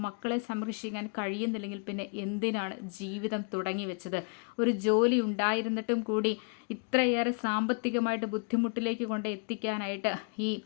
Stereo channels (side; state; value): right; quieter; 38.3 dB